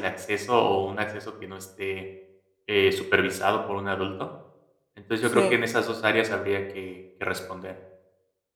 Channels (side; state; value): both; identical; correlation 1.00